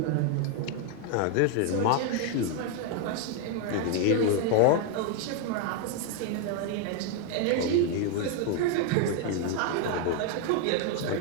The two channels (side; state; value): both; different; correlation 0.00